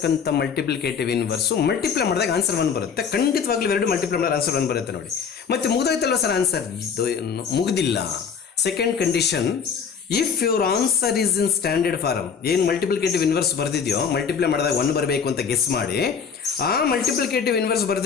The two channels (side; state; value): right; quieter; 6.5 dB